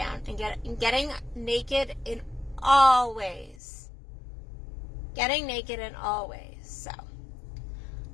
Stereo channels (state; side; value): drops out; right; at 3.6 s